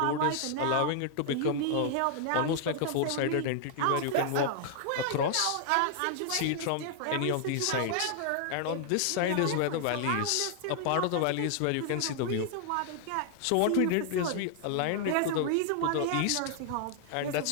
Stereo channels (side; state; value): both; different; correlation 0.00